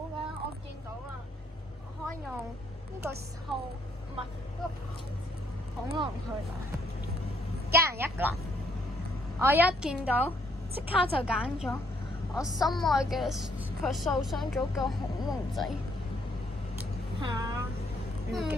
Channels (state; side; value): normal; both; correlation 0.70